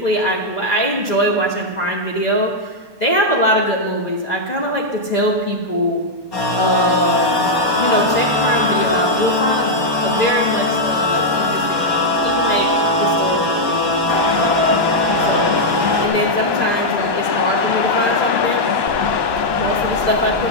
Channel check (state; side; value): late; left; 1.2 ms